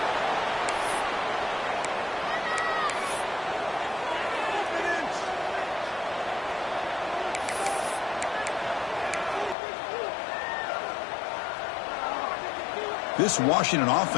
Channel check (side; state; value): right; drops out; at 9.6 s